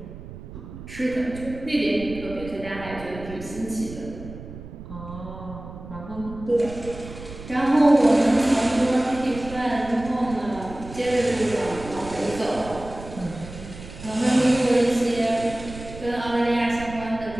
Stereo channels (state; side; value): noise; right; rumble, 13 dB below the sound